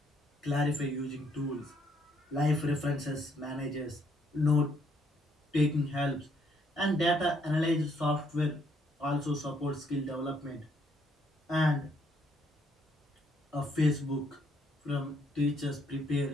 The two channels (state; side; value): normal; both; correlation 0.70